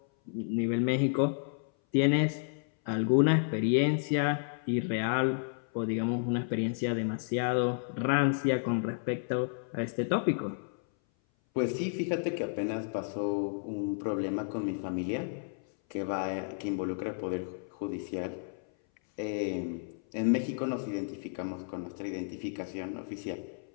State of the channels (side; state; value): right; silent; 57 dB below the other